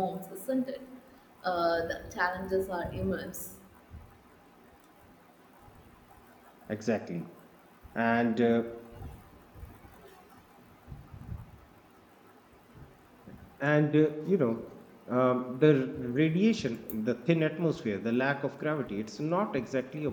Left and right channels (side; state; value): both; identical; correlation 1.00